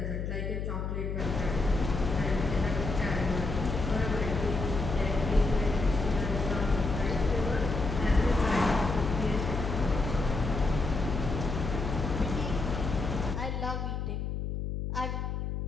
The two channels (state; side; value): noise; left; hum, 3 dB below the sound